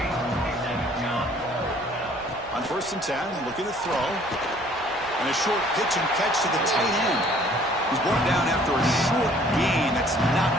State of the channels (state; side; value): noise; right; rumble, 23 dB below the sound